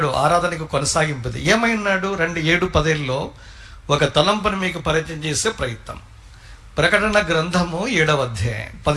ఆరాధనకు కొనసాగింపుది. ఏమై ఉన్నాడు? 7-10లో ఒక తలంపును మీకు పరిచయం చేసే ప్రయత్నం. ప్రకటన గ్రంథము 7వ అధ్యాయం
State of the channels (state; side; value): identical; both; correlation 1.00